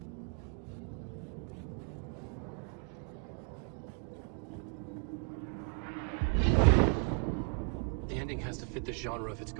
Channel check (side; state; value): left; quieter; 36.0 dB